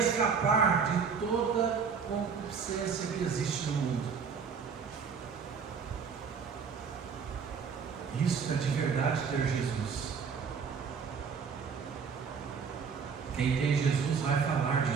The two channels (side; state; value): left; quieter; 6.0 dB